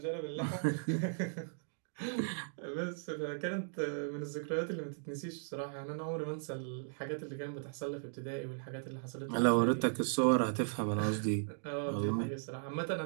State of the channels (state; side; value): silent; left; digital silence